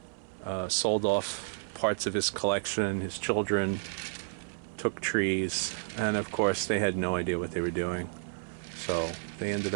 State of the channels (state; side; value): silent; left; 57 dB below the other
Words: sold off parts of his collection. His children took trees, and of course, they had no idea what they were doing. So they ended